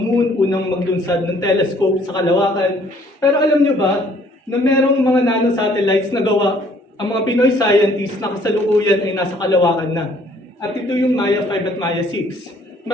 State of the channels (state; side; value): normal; both; correlation 0.60